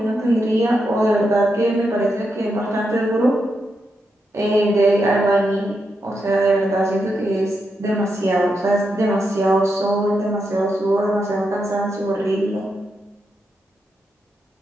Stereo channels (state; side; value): normal; both; correlation 0.84